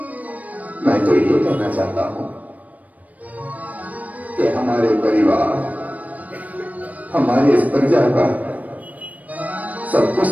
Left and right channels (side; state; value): left; late; 0.073 ms